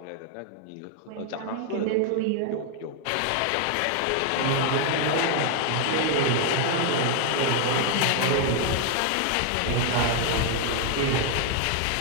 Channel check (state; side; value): different; both; correlation 0.00